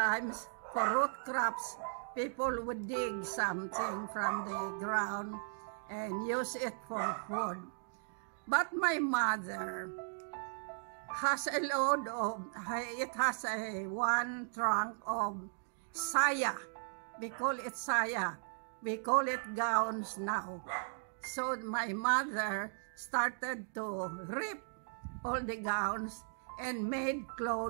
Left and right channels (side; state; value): left; silent; digital silence